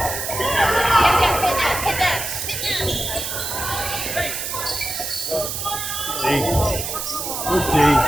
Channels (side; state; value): right; noise; hiss, 4 dB below the sound